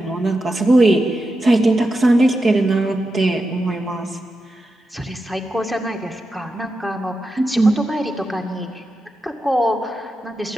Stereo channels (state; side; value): normal; both; correlation 0.89